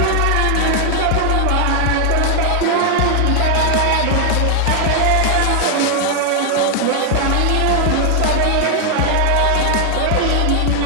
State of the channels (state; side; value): different; both; correlation 0.00